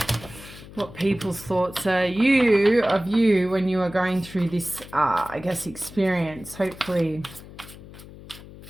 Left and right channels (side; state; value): left; noise; hum, 17 dB below the sound